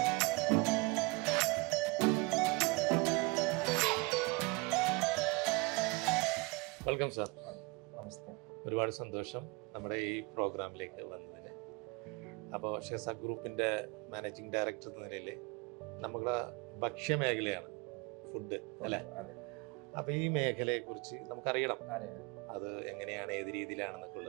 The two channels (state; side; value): quieter; left; 26.8 dB